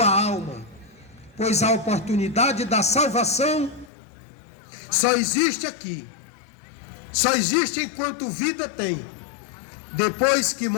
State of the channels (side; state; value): right; drops out; at 3.9 s